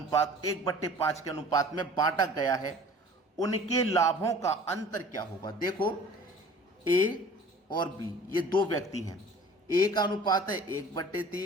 1/5 के अनुपात में बांटा गया है, उनके लाभों का अंतर क्या होगा। देखो, ए और बी ये दो व्यक्ति हैं। ए का अनुपात है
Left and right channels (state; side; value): normal; both; correlation 0.47